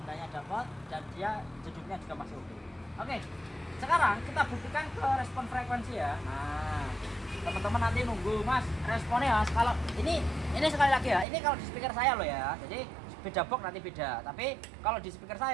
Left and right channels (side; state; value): left; drops out; at 11.2 s